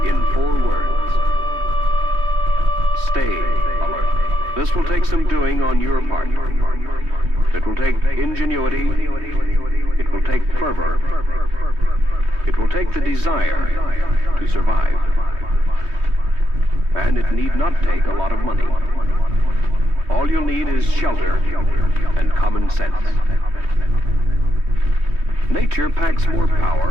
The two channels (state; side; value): late; left; 3.2 ms